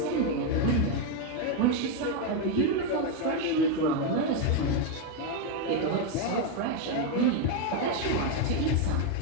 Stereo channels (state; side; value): different; both; correlation 0.02